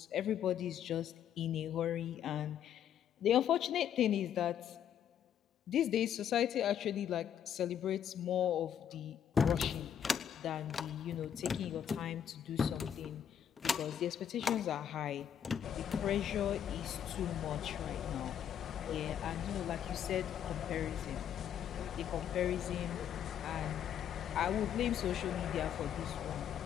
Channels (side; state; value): right; quieter; 9.2 dB